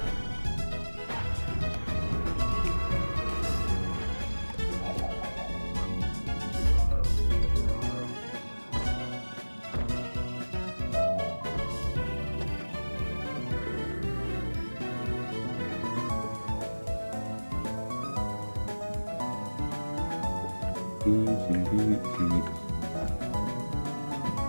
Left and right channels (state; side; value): inverted; both; correlation -1.00